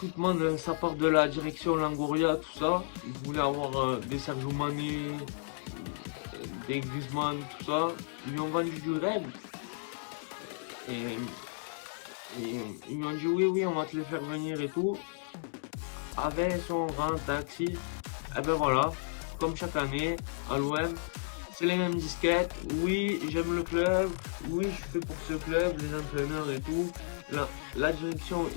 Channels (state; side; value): silent; right; digital silence